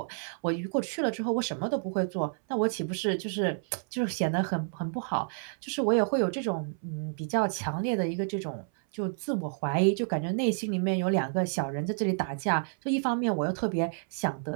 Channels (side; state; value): left; silent; 58 dB below the other